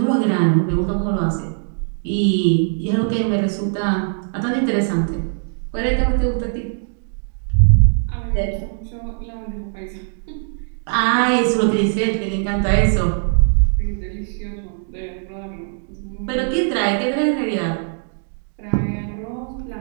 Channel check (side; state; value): left; silent; digital silence